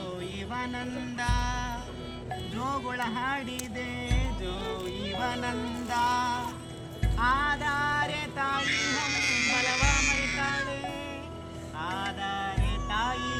ಇವನಂದ ಜೋಗುಳ ಹಾಡಿದೆ ಜೋ ಇವನಂದ ಆಧಾರೆ ತಾಯಿ ಹಂಬಲವ ಮರಿತಾಳೆ ಆಧಾರೆ ತಾಯಿ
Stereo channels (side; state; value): both; identical; correlation 1.00